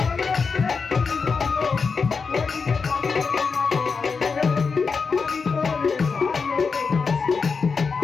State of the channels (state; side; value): quieter; right; 5.1 dB